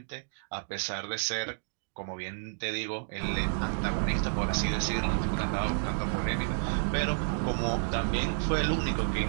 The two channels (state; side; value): silent; left; digital silence